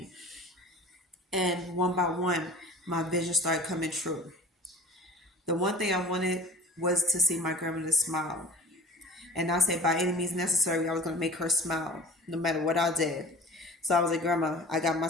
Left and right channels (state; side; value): normal; both; correlation 0.42